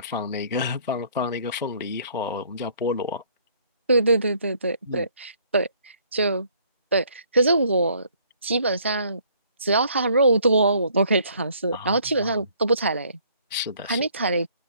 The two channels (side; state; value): both; inverted; correlation -0.62